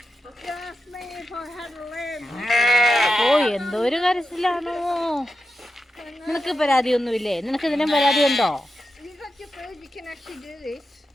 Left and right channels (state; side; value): normal; both; correlation 0.89